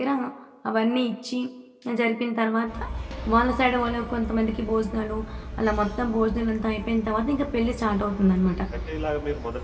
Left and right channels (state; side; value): identical; both; correlation 1.00